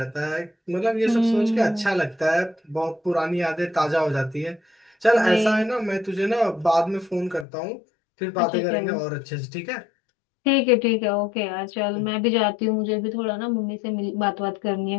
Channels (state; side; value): drops out; right; at 7.5 s